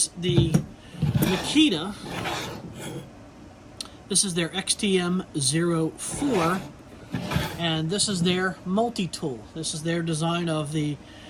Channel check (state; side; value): identical; both; correlation 1.00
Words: the Makita. This is their XTM04, and this is their multi-tool. This is their design of the